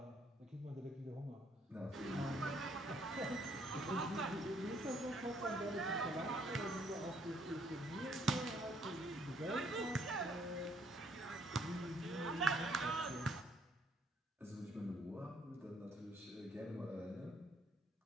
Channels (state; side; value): normal; both; correlation 0.66